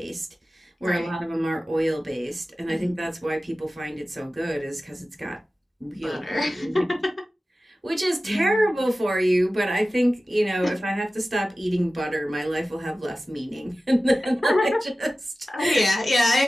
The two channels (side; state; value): both; normal; correlation 0.95